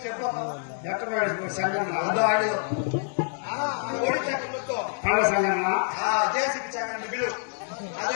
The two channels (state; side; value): silent; right; 60 dB below the other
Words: చెప్పమ్మా ఎక్కడ సంఘం ఆడు ఒడి చక్రంతో సంఘం జేసీకి చక్రం బిలు